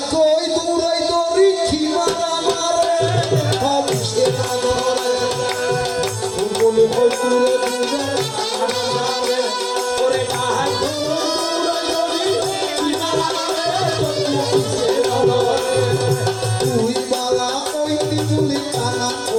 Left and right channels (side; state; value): both; identical; correlation 1.00